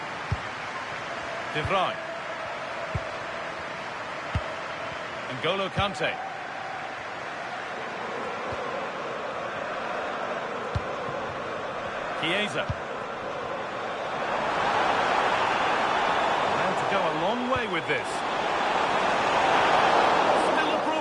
De Vrij. N'Golo Kante. Chiesa. Allowed to go a long way with this. Still a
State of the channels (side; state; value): both; identical; correlation 1.00